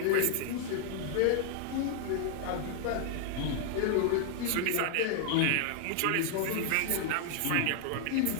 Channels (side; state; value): both; different; correlation -0.01